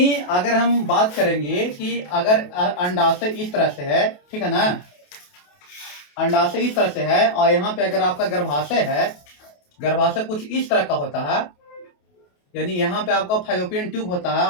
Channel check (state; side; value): late; right; 28 ms